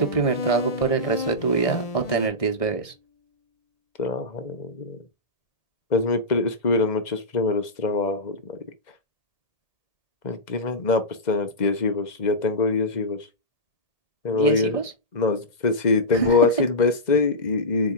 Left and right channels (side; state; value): right; late; 2.0 ms